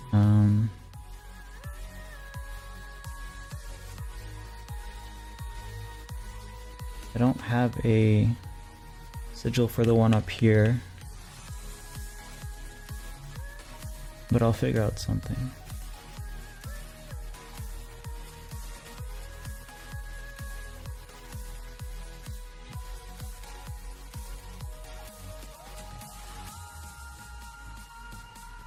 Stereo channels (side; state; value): both; identical; correlation 1.00